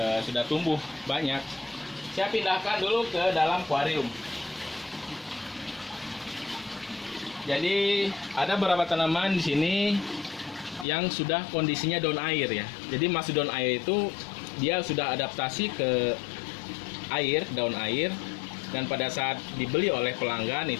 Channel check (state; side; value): drops out; right; at 10.9 s